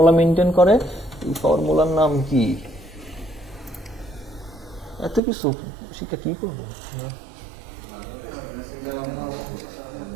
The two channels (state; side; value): drops out; left; at 5.2 s